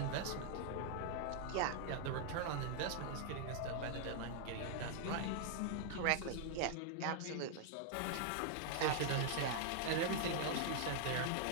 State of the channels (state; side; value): different; both; correlation 0.00